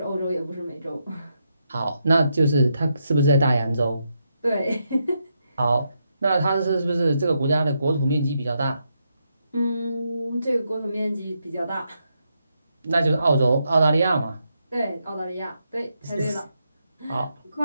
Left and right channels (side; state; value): both; inverted; correlation -0.81